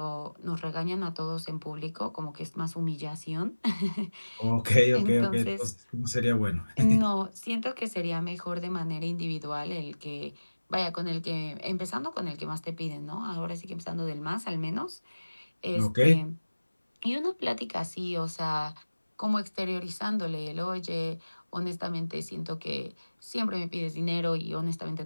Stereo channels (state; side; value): inverted; both; correlation -1.00